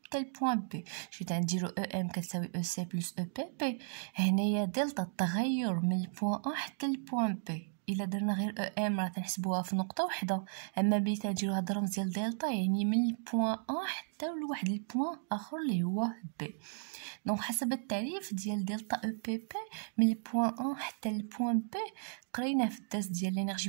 حتى البوان بي. شفت غنديرو او ام كتساوي او سي بلس او بي بي. هنايا دلتا التغير من البوان ا حتى البوان بي. الا درنا غير او ام راه تنحسبوها في نقطه وحده، اما ملي تنديرو هاد الرمز ديال دلتا يعني من البوان ا حتى لواحد البوان اخر اللي هو بي. دونك حسب التعريف ديال دلتا او بي بي من البوان ا حتى البوان بي قرينا في الدرس ديال لينيرجي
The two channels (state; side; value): silent; left; digital silence